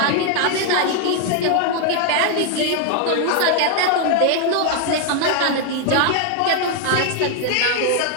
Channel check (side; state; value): both; different; correlation 0.00